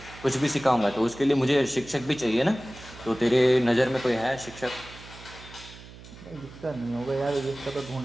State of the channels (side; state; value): right; noise; hum, 18 dB below the sound